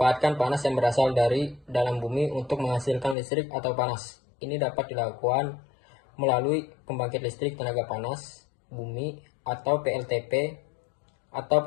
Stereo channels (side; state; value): right; drops out; at 3.2 s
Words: panas yang berasal dari dalam bumi untuk menghasilkan listrik atau panas. Ini dapat dilakukan melalui pembangkit listrik tenaga panas bumi atau PLTP atau